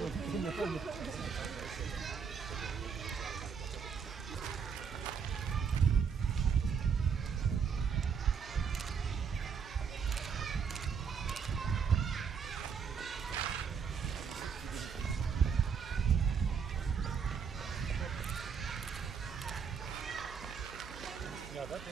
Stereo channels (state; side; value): quieter; left; 6.4 dB